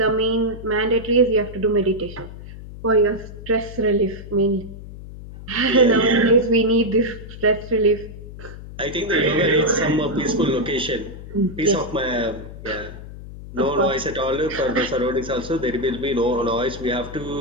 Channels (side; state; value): left; noise; hum, 13 dB below the sound